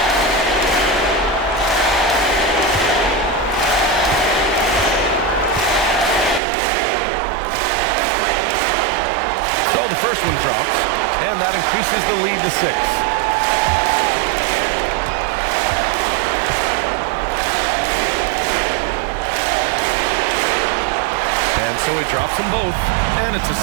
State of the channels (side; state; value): left; drops out; at 6.4 s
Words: The first one drops, and that increases the lead to 6. And so he drops them both, and it's a